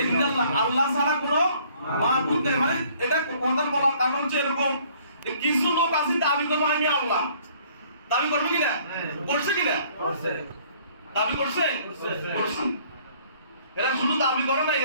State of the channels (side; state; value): both; inverted; correlation -0.59